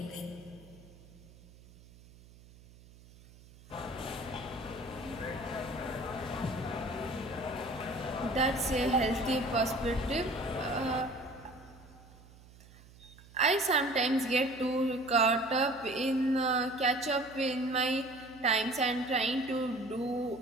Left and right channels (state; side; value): noise; right; hum, 23 dB below the sound